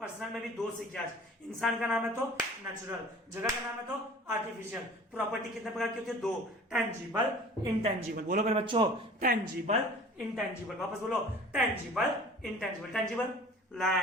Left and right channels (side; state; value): both; normal; correlation 0.45